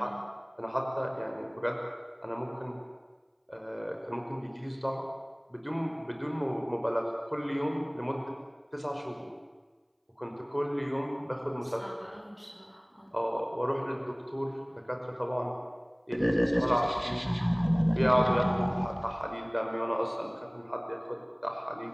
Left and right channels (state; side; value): identical; both; correlation 1.00